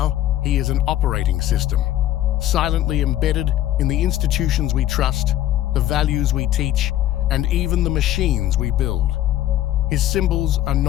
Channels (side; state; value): right; quieter; 13.1 dB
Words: he is an operating system, silently embedded in the institutions we trust, the values we teach, and even the machines we build. His symbols are